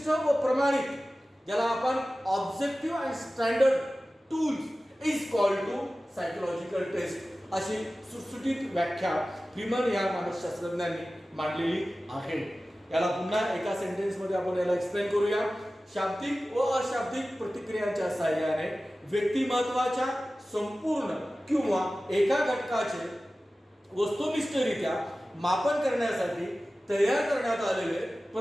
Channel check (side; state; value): both; normal; correlation 0.96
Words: व प्रमाणित, ज्याला आपण objective and standard tools is called to psychological test अशी सुटसुटीत व्याख्या फ्रीमन या मानसशास्त्रज्ञांनी मांडलेली आहे. याला पुन्हा एका सेंटेन्स मध्ये आपण याला एक्सप्लेन करूया. शाब्दिक व अशाब्दिक प्रतिक्रियांच्या साहाय्याने व्यक्तिमत्वाच्या संपूर्ण किंवा एका घटकाचे वस्तुनिष्ठरित्या मापन करण्यासाठी तयार करण्यात आलेले